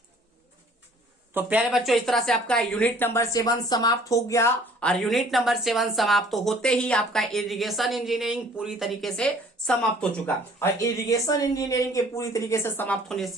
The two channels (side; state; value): both; normal; correlation 0.54